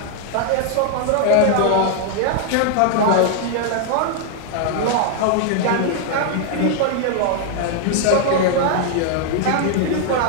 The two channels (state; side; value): different; both; correlation 0.00